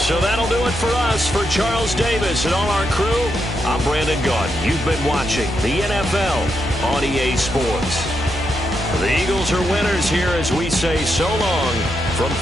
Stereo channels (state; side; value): noise; right; hum, 10 dB below the sound